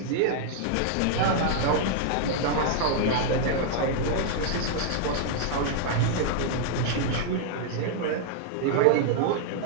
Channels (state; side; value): different; both; correlation 0.00